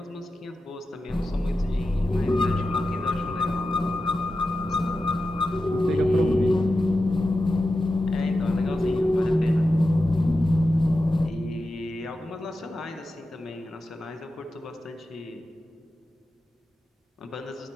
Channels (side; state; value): both; normal; correlation 0.92